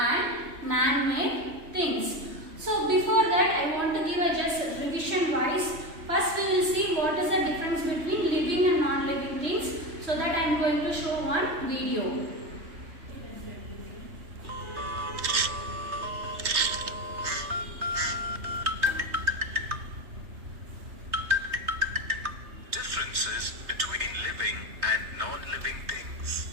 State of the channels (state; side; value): late; left; 3.3 ms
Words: man-made things. So before that I want to give a just revision wise. First we will see what is the difference between living and non-living things. So that I am going to show one video. Differences between living and non-living things.